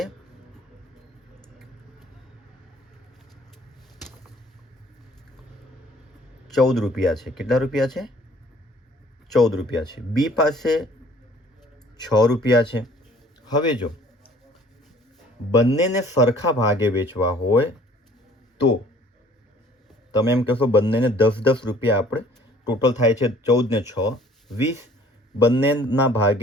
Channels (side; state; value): both; normal; correlation 0.55